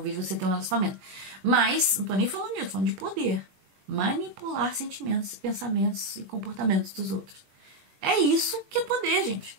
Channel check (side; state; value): left; late; 21 ms